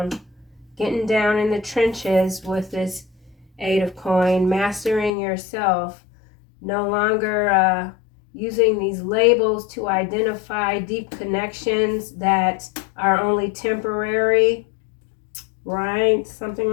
in the trenches with this Eight of Coin, mastering yourself, no longer using these labels to identify deep connections that are only temporary, right? Something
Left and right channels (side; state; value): right; drops out; at 5.1 s